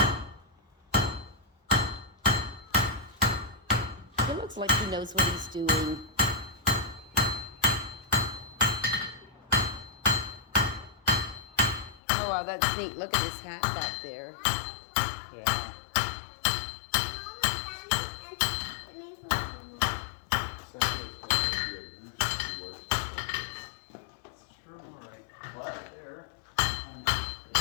It looks like he knows what he's doing. Oh, wow, that's neat. Look at his hat back there. Yeah. It's true, all right. Right there.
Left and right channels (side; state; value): right; drops out; at 12.0 s